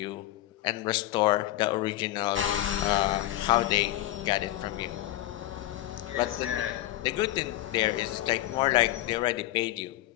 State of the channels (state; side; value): quieter; right; 15.5 dB